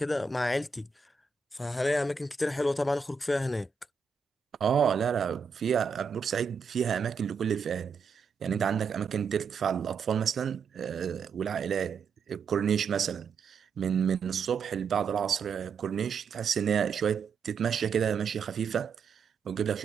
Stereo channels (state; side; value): quieter; left; 5.3 dB